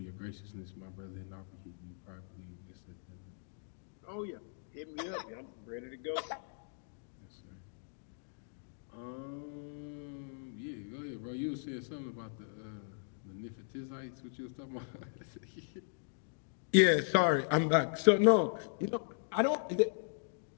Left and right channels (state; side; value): silent; right; digital silence